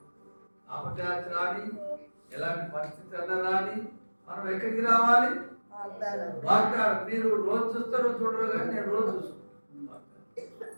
అపచారం రాని, ఎలాంటి పరిస్థితి అన్నా రాని, మనం ఎక్కడికి రావాలి? వాగ్దానం. మీరు రోజు చూస్తారో చూడరు కానీ నేను రోజు చూస్తాను.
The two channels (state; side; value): inverted; both; correlation -1.00